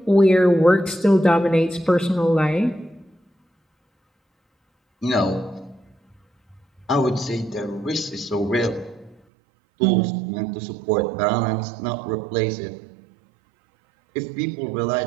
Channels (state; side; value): drops out; left; at 9.2 s